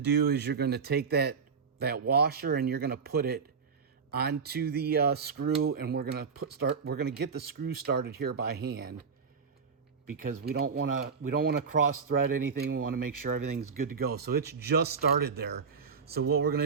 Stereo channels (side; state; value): left; quieter; 5.7 dB